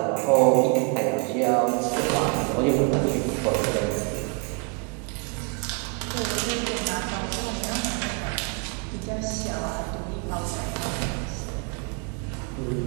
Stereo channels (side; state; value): left; quieter; 35.1 dB